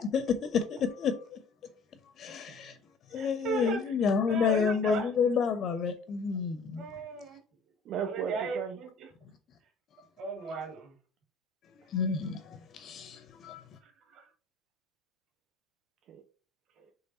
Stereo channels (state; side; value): quieter; right; 3.9 dB